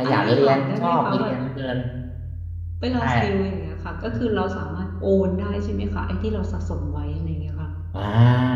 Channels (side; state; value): both; identical; correlation 1.00